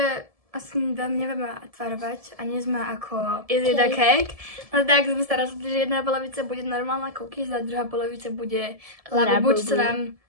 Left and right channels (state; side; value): late; left; 1.7 ms